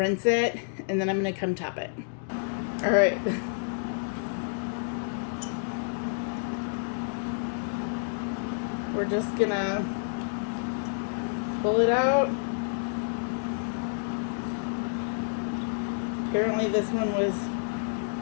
it and then I'm gonna come top it. All right. We're just gonna pull it out. Apparently this one was,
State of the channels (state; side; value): silent; right; digital silence